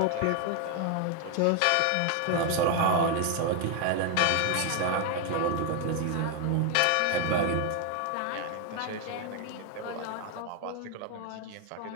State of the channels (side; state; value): both; different; correlation 0.01